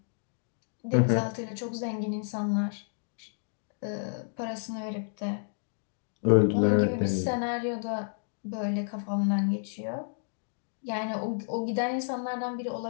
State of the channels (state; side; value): silent; right; digital silence